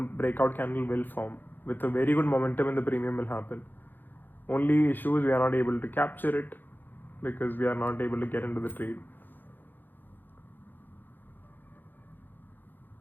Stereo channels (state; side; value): late; right; 0.089 ms